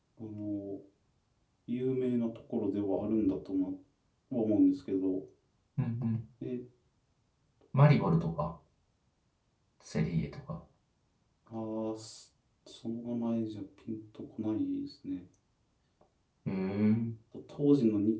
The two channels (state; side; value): identical; both; correlation 1.00